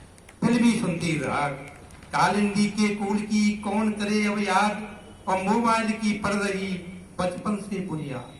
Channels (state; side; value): identical; both; correlation 1.00